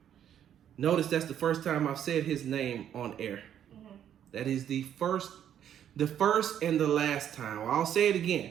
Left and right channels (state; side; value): quieter; left; 9.9 dB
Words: Notice that's the first time I've said his name on air. Mm-hmm. That is the first and the last time. I'll say it again,